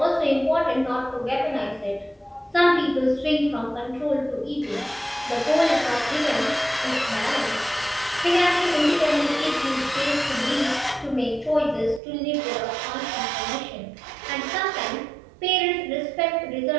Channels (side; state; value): left; drops out; at 12.0 s